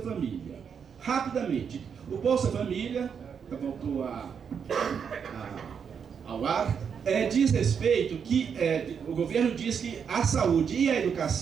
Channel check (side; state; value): left; quieter; 7.0 dB